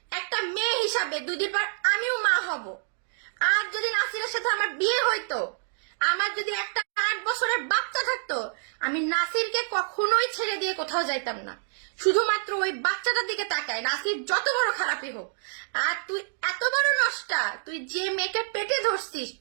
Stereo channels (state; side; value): silent; left; digital silence